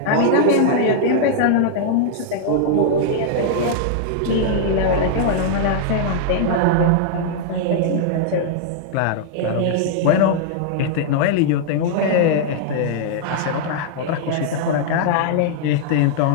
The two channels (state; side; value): different; both; correlation -0.01